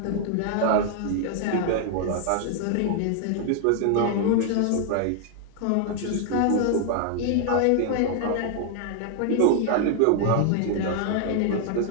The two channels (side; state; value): both; different; correlation 0.00